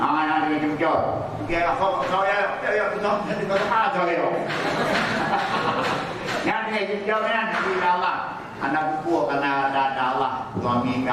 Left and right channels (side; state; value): both; identical; correlation 1.00